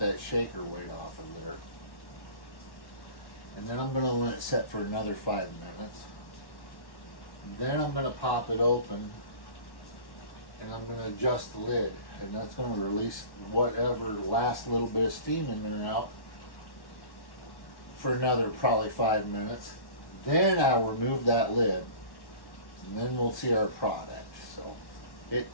shaker weight off of there. And then I'm going to let it set for another 5 minutes. Then I'm going to pop it open and I'm going to adjust the lid. And that's going to release whatever last little bit of steam in there and out for another probably 5 minutes. Then I'll remove that lid and then we'll see our product. So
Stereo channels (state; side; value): late; right; 1.1 ms